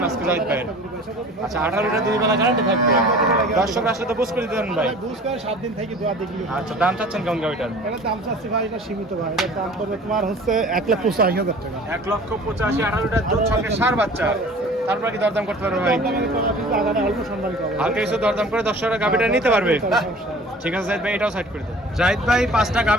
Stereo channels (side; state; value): both; normal; correlation 0.45